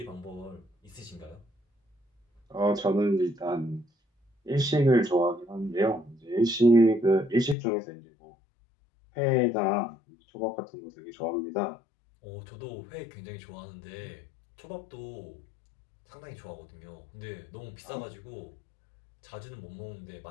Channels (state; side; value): drops out; right; at 7.6 s